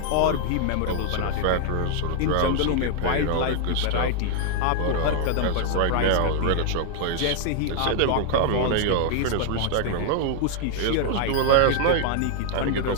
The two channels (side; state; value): both; different; correlation 0.00